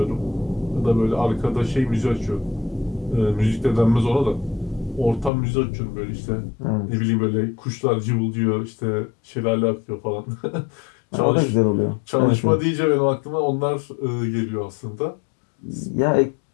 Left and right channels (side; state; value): right; drops out; at 5.3 s